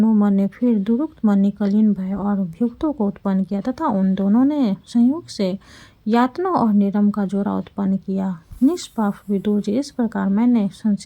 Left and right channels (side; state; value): both; identical; correlation 1.00